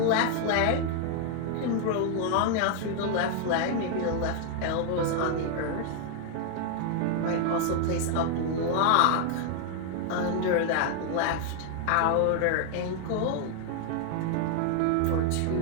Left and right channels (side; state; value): both; different; correlation 0.00